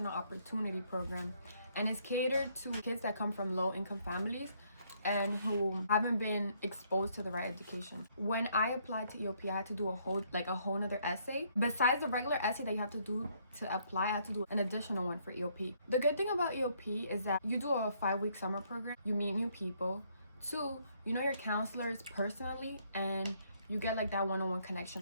Opportunity Program, and it's catered to kids that come from low-income families and who haven't been exposed to the right education. When I applied to EOP, I had to do a whole nother essay. Besides the regular essay that you have to do to apply, I had to do an additional one for EOP. The good thing about EOP is that you do a 5-week summer program, you meet new people. 2, you know your counselors personally, and you get like that one-on-one connection.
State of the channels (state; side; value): inverted; both; correlation -0.69